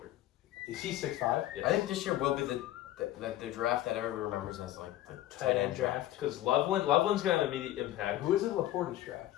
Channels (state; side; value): quieter; right; 14.2 dB